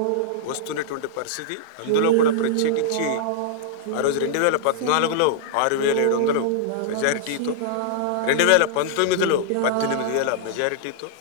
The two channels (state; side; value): different; both; correlation -0.01